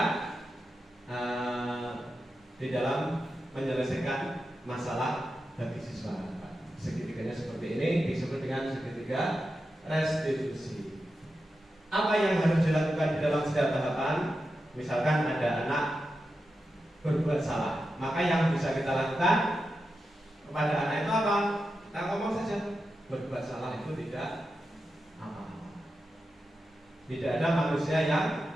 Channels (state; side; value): normal; both; correlation 0.90